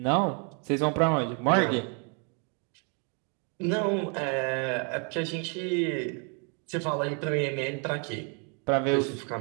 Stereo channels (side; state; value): left; quieter; 37.7 dB